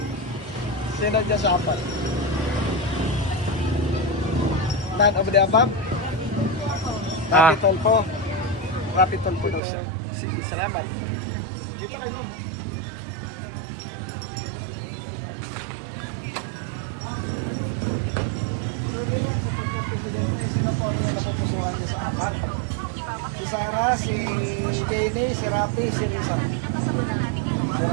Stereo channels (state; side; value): drops out; left; at 9.6 s